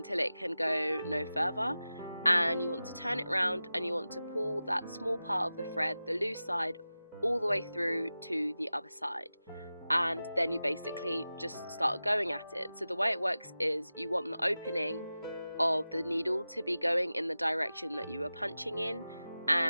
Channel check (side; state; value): both; inverted; correlation -0.95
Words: it can go no further, and you want to turn it around and you want to pull that small part of the thread, the loose side, all the way through to the other side, and then you basically just start going at it. So the way it works is you want the opening of the needle to be going in the direction that you are punching in,